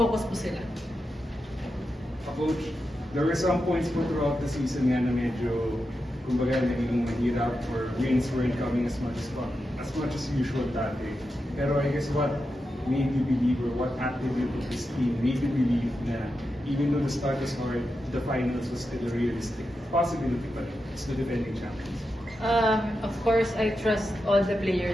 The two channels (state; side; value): normal; both; correlation 0.89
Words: po sila. Coach, there were some points po throughout the season nga na medyo kumbaga naging mahirap or wins weren't coming as much as usual dati. Pero I guess what made you believe or what attribute of this team made you believe na even though the start was hard, the finals was still a realistic possibility, but it's the defending champions? Of course, I trust all the